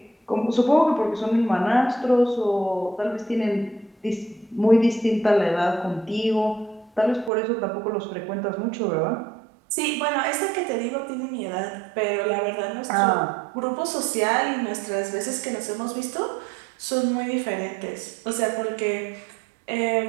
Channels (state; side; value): drops out; left; at 7.3 s